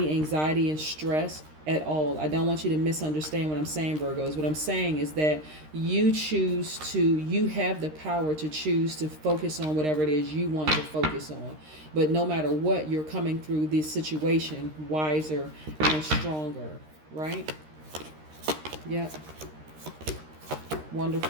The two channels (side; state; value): left; late; 13 ms